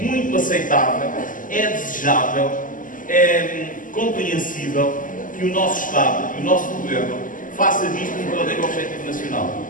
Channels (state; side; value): late; right; 0.38 ms